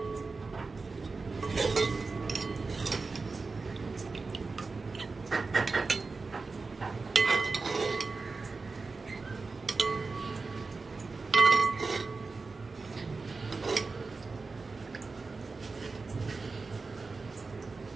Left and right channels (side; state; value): left; quieter; 4.1 dB